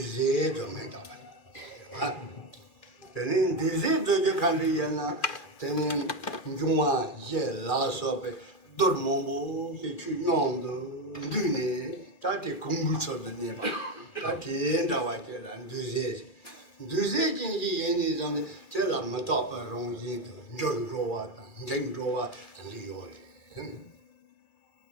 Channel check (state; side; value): late; right; 2.4 ms